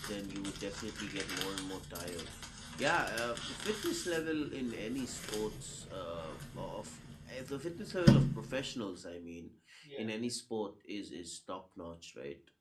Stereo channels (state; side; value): identical; both; correlation 1.00